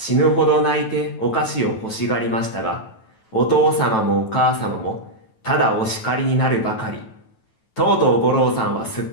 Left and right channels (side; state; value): right; late; 9.2 ms